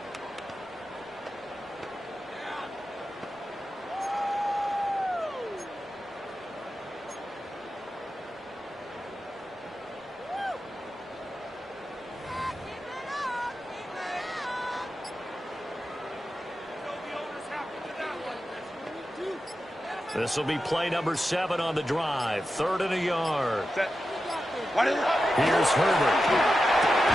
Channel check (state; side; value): normal; both; correlation 0.91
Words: This will be play number 7 on the drive. 3rd and a yard. Set. Here's Herbert.